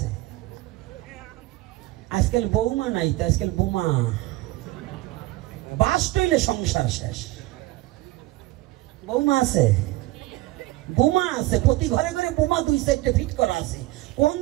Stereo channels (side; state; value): left; quieter; 18.3 dB